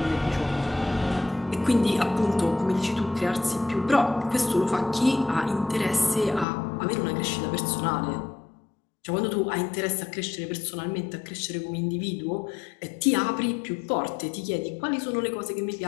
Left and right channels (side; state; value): right; drops out; at 6.5 s